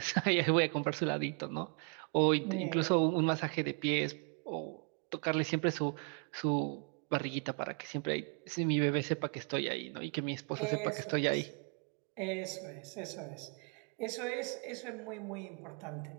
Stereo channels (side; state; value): left; quieter; 39.4 dB